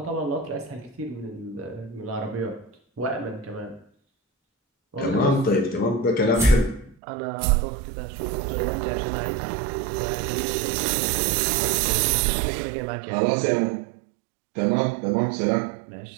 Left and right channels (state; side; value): drops out; left; at 7.0 s